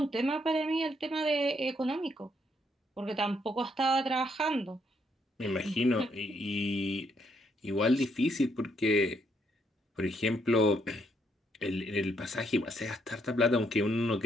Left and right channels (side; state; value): both; normal; correlation 0.73